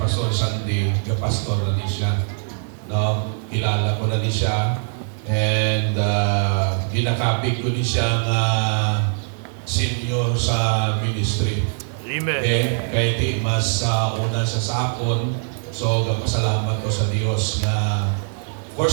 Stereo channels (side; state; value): left; silent; 64 dB below the other